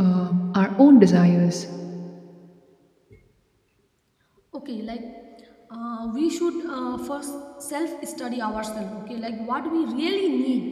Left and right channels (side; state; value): both; identical; correlation 1.00